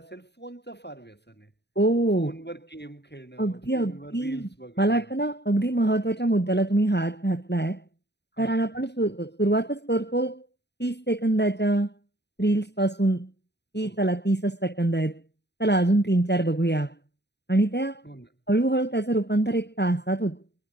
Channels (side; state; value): right; late; 0.50 ms